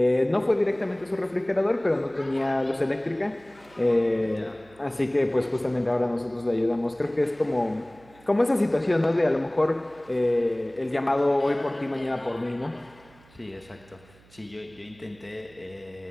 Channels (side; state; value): right; noise; hum, 27 dB below the sound